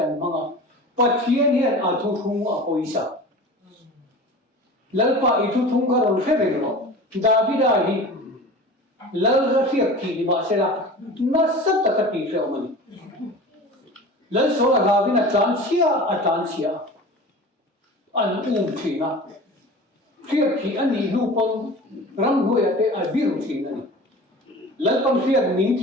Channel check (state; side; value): normal; both; correlation 0.37